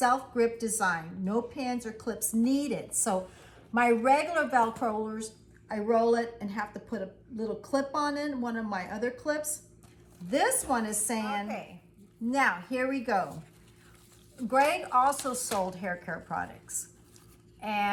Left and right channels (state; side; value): identical; both; correlation 1.00